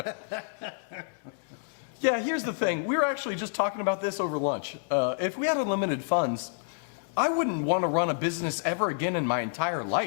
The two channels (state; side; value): silent; right; digital silence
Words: Yeah, here's the thing. We were actually just talking about this over lunch. If we had unlimited funds, I wouldn't want to run a business ever again in my entire